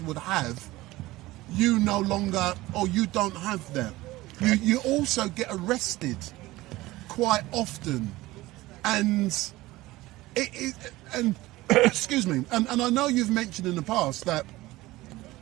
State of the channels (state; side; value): quieter; left; 18.5 dB